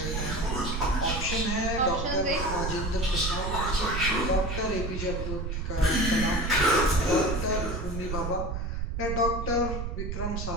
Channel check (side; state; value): right; noise; rumble, 3 dB below the sound